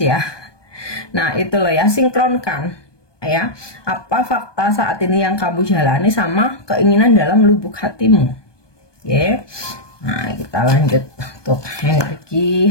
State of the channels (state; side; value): late; right; 1.2 ms